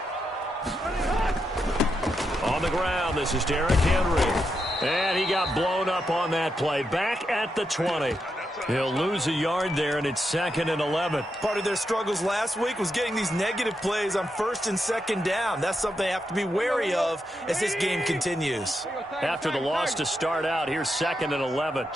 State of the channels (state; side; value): normal; both; correlation 0.84